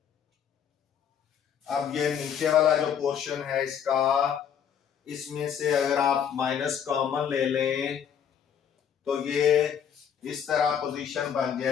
अब ये नीचे वाला जो पोर्शन है इसका, इसमें से अगर आप माइनस कॉमन ले लें तो ये इस तरह पोजीशन बन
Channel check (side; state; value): right; quieter; 8.3 dB